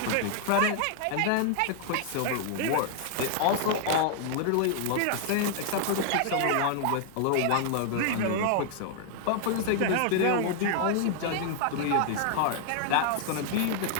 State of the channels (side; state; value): both; different; correlation 0.00